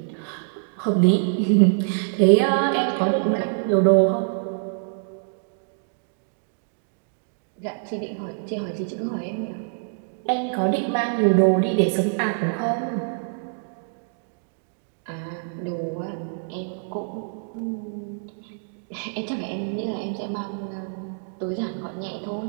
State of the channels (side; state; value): left; silent; digital silence